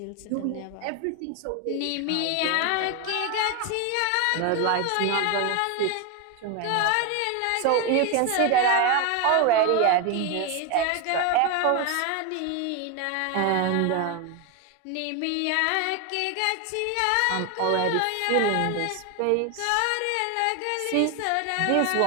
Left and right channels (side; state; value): both; different; correlation 0.01